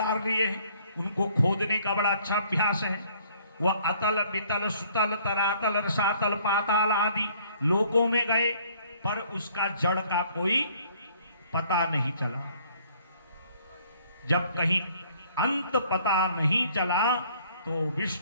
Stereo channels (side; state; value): both; inverted; correlation -0.60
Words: लिए हैं, उनको खोदने का बड़ा अच्छा अभ्यास है। वह अतल वितल सुतल तरातल रसातल पाताल आदि लोकों में गए, पर उसका जड़ का कोई पता नहीं चला। जब कहीं अंत पता नहीं चला तो